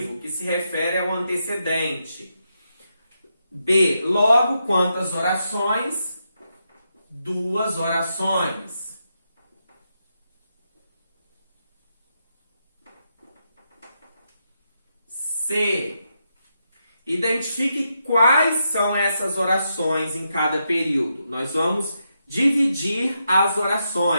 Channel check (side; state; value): both; inverted; correlation -0.83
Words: que se refere ao antecedente. B. Logo, quantas orações? 2 orações. C. Identifique quais são essas orações em cada período. Nós vamos dividir as